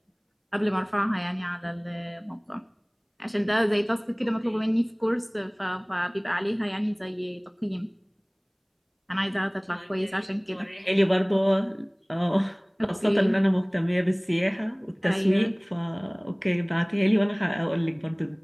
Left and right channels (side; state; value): both; identical; correlation 1.00